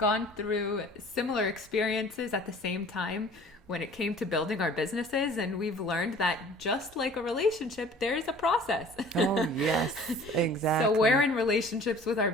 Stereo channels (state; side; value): normal; both; correlation 0.48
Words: through similar experiences at the same time when it came to building our businesses, and we've learned that just like a relationship, there is a process. Oh, yes, exactly. So we're in relationships with our